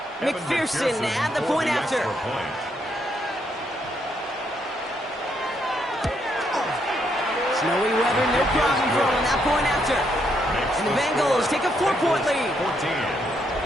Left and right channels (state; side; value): normal; both; correlation 0.76